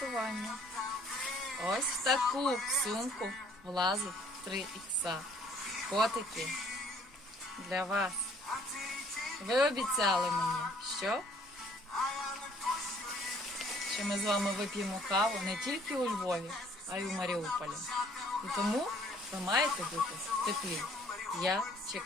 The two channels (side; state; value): both; normal; correlation 0.59